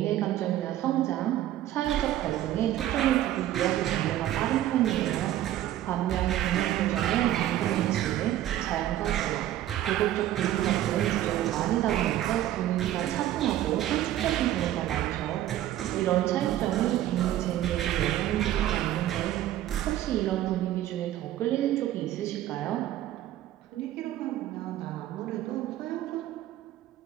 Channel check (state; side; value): quieter; left; 13.2 dB